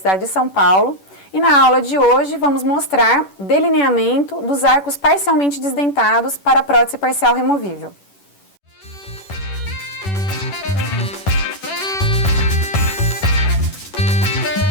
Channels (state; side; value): late; right; 10 ms